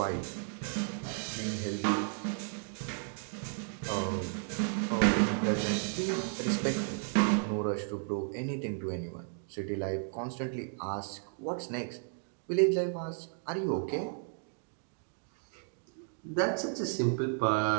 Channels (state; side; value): silent; left; 55 dB below the other